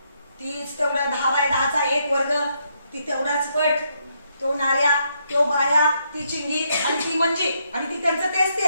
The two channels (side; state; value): both; inverted; correlation -0.76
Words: तीच तेवढा 10x10चा एक वर्ग, ती तेवढाच पट, तो नाऱ्या, तो बाया, ती चिंगी आणि ती मंजी आणि ती त्यांचं तेच